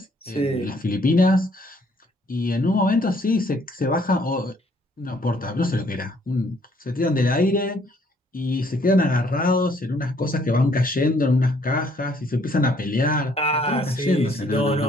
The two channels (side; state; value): both; normal; correlation 0.64